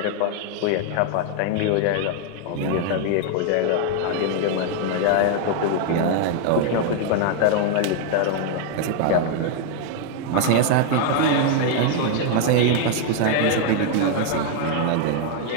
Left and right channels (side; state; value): both; different; correlation 0.00